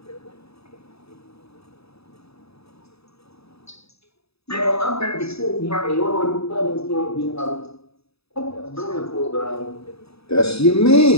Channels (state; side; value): late; right; 0.78 ms